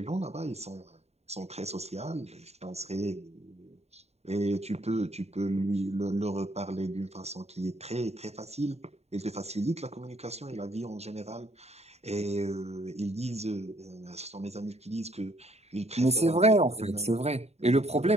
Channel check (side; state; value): left; late; 0.31 ms